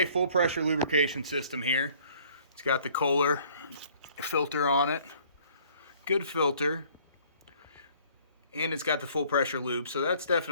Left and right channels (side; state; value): both; inverted; correlation -0.57